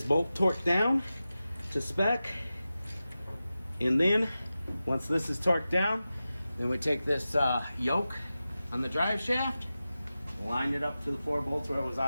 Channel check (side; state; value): both; inverted; correlation -0.94